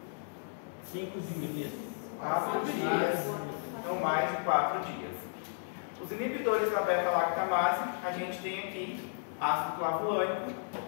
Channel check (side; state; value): right; silent; digital silence